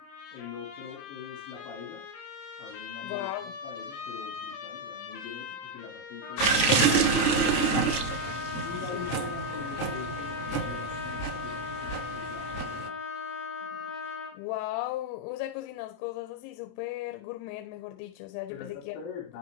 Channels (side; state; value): right; late; 29 ms